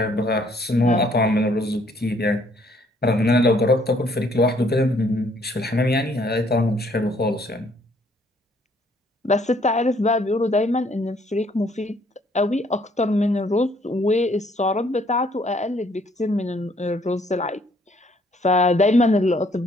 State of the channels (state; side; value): normal; both; correlation 0.64